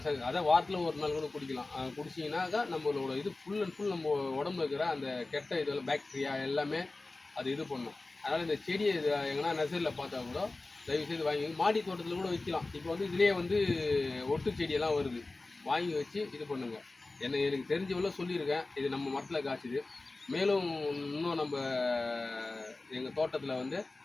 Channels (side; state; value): right; quieter; 3.2 dB